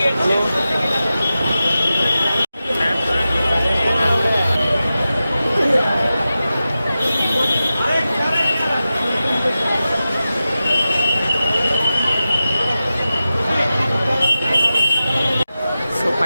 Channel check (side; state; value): both; inverted; correlation -0.93